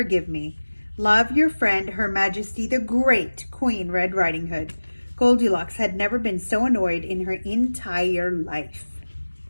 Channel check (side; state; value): both; inverted; correlation -1.00